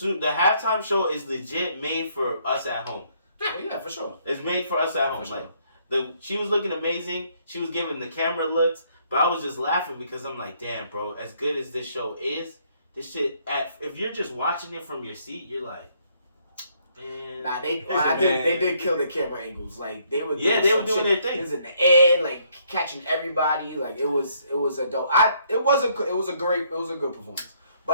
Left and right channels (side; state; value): both; inverted; correlation -0.68